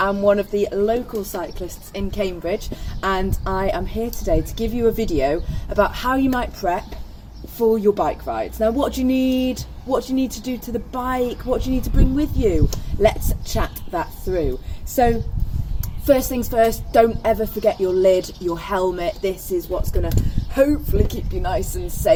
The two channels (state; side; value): identical; both; correlation 1.00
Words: one of the local cyclists in Cambridge, and I am here today to give you a video about how you might prep for your bike rides. Now, what do you need? What do you need to do to the bike? What do you need to bring with you? Let's chat that through. So, first things first, don't ever forget your lid, your helmet. This is what's going to hopefully keep you nice and